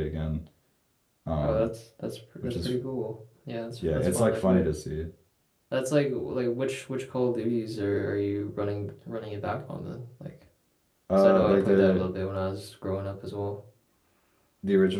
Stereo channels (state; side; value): identical; both; correlation 1.00